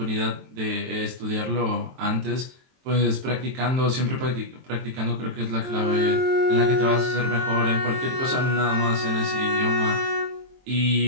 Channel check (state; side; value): late; left; 23 ms